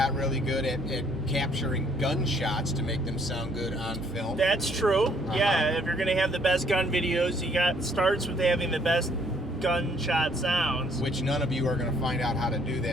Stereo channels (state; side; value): normal; both; correlation 0.64